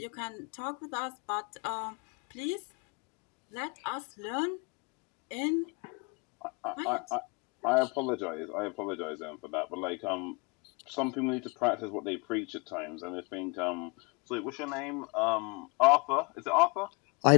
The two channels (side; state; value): right; quieter; 30.5 dB